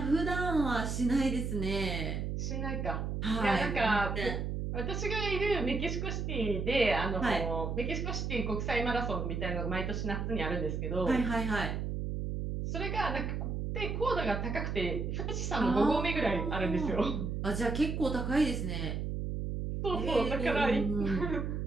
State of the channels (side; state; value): right; noise; hum, 2 dB below the sound